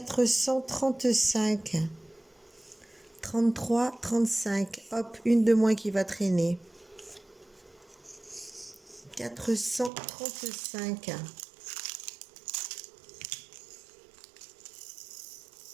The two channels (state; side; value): drops out; left; at 9.9 s